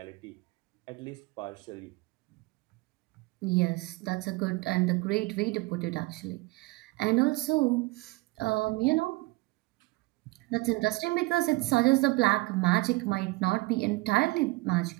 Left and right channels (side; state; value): left; quieter; 22.6 dB